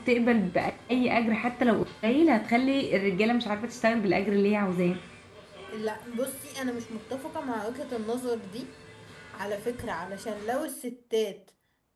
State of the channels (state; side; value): identical; both; correlation 1.00